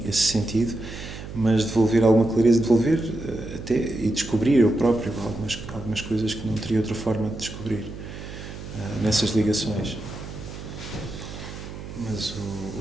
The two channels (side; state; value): right; noise; hum, 11 dB below the sound